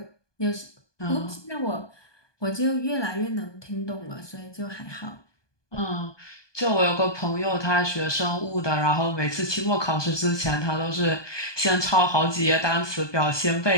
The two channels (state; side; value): late; right; 1.2 ms